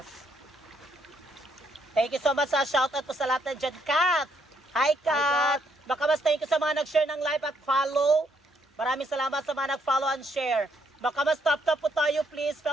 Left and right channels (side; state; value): both; normal; correlation 0.72